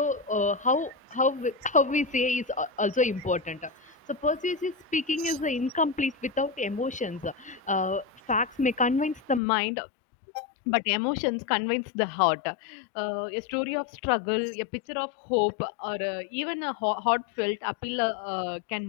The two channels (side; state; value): right; drops out; at 9.4 s